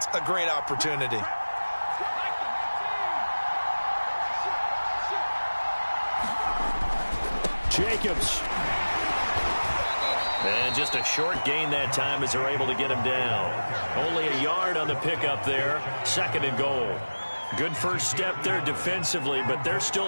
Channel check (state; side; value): inverted; both; correlation -1.00